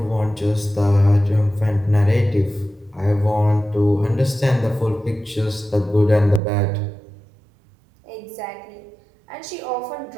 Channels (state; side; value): drops out; left; at 6.4 s